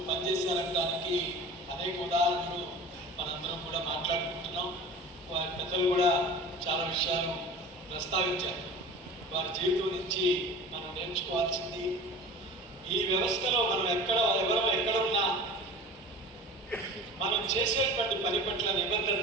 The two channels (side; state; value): both; normal; correlation 0.38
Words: పనిచేశారనడానికి అనేక ఉదాహరణలు మనందరం కూడా మాట్లాడుకుంటున్నాం. వారి పెద్దలు కూడా చాలా విషయాలు ప్రస్తావించారు. వారి జీవితం నుంచి మనం నేర్చుకోవాల్సింది, ఈ వ్యవస్థలో మనం ఎవరు ఎక్కడున్నా మనం చేసేటువంటి పని పట్ల